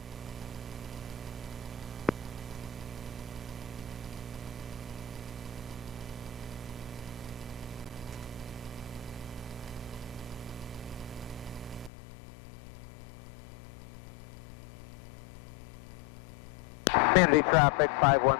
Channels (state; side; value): drops out; right; at 11.9 s